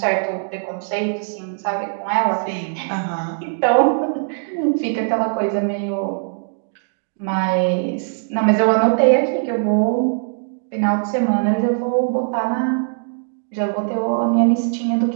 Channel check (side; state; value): left; silent; digital silence